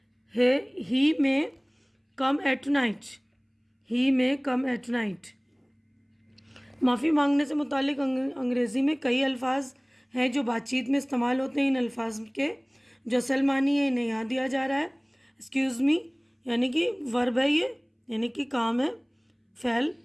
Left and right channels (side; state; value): both; identical; correlation 1.00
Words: ही में कम एट नाइट, ही में कम एट नाइट। माफ़ी मांगने से मुतालिक अंग्रेज़ी में कई अल्फाज हैं जो बातचीत में इस्तेमाल होते हैं। इन अल्फाज के जो असल मानी है इन्हें यहाँ दिया जा रहा है। एक्सक्यूज़ मी यानी कि वर्ब है ये, यानी कि काम है, फ़ैल,